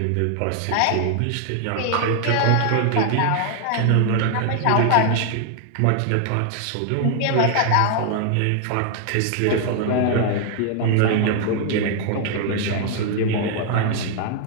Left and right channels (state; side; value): different; both; correlation 0.00